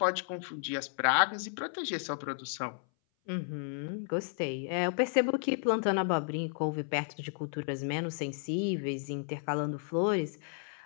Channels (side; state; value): right; silent; 56 dB below the other